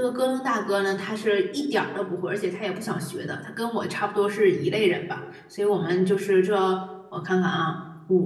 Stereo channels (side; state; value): both; identical; correlation 1.00